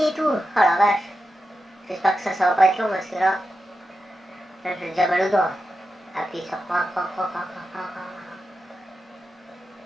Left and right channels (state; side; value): normal; both; correlation 0.90